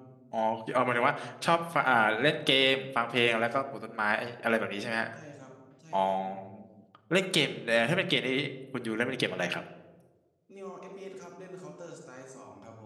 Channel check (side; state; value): both; identical; correlation 1.00